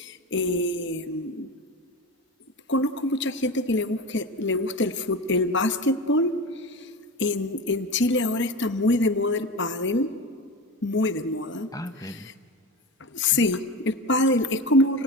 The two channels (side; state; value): both; normal; correlation 0.26